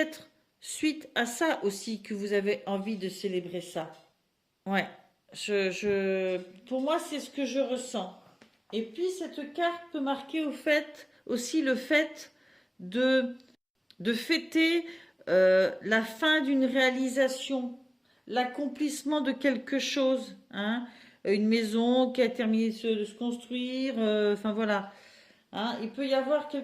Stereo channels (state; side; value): identical; both; correlation 1.00